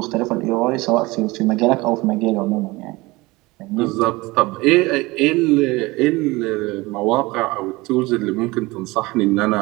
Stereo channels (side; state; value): left; quieter; 22.1 dB